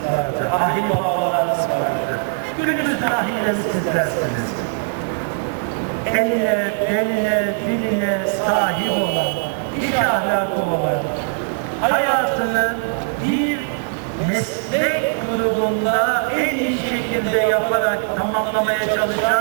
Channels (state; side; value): silent; left; digital silence